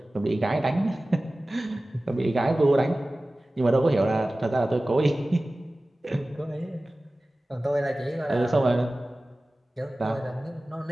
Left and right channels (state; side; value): normal; both; correlation 0.97